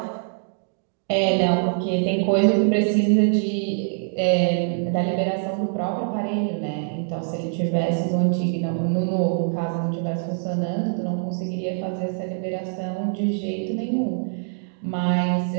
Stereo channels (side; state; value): left; silent; digital silence